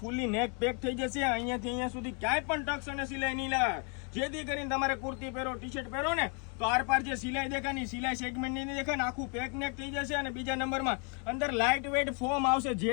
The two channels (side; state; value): right; quieter; 37.8 dB